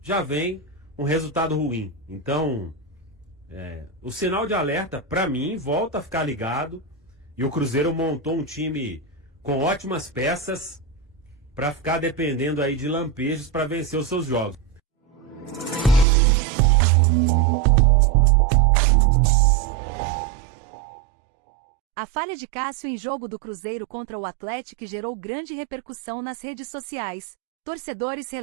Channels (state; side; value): drops out; left; at 16.1 s